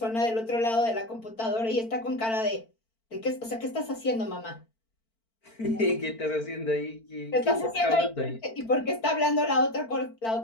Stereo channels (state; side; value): late; right; 4.4 ms